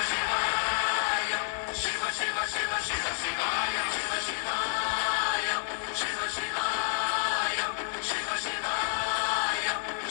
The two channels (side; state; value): right; silent; digital silence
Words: Shivaya, Shiva Shiva Shiva Shiva Shivaya, Shiva Shivaya, Shiva Shivaya, Shiva Shivaya,